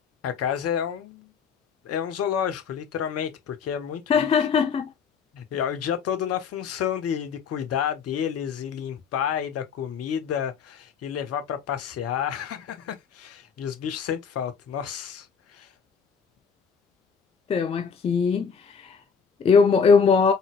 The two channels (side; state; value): right; quieter; 6.2 dB